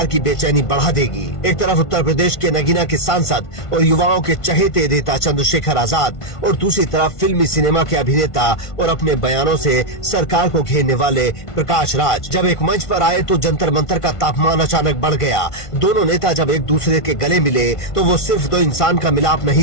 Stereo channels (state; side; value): late; right; 1.5 ms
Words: की बेचैनी बढ़ा देगी। एक तरफ उत्तर प्रदेश के नगीना के सांसद और युवाओं के चहेते नेता चंद्रशेखर आजाद और दूसरी तरफ फिल्मी सिनेमा के अभिनेता और अपने बयानों से सरकार को घेरने वाले प्रकाश राज। जब एक मंच पर आए तो जंतर मंतर का तापमान अचानक बढ़ गया। दोनों नेता जब एक दूसरे के गले मिले तो वो सिर्फ दो इंसान का मिलाप